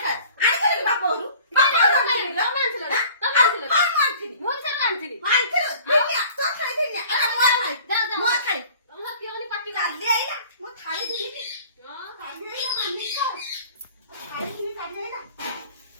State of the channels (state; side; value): inverted; both; correlation -0.48